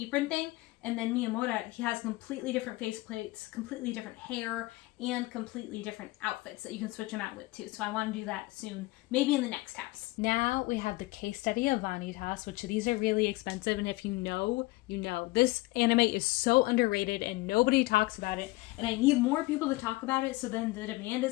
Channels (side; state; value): right; quieter; 20.7 dB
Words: thing. And then Miyamura, he has completely different face plates, completely different hair, and completely different outfits that you can switch them out with too. So I want to do that soon, maybe in the next house. Now we have the case study of Vanitas, which these are really expensive. And if you know, you know. This anime is so underrated and nobody talks about it. And I need more people to talk about it so then the demand